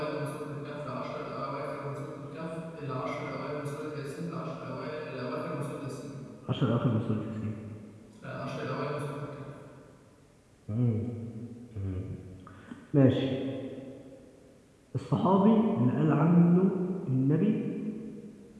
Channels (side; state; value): both; identical; correlation 1.00